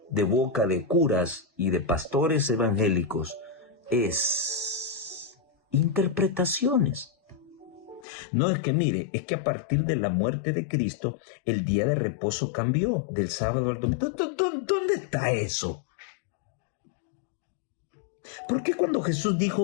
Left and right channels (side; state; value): right; drops out; at 8.1 s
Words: de boca de curas y de pastores evangélicos es interpretaciones. No es que mire, es que a partir de la muerte de Cristo, el día de reposo cambió del sábado al domingo. ¿Dónde está eso? ¿Por qué cuando Jesús dijo